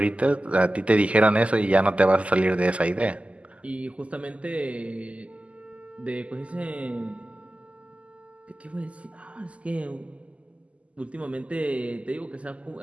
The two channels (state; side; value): late; left; 0.063 ms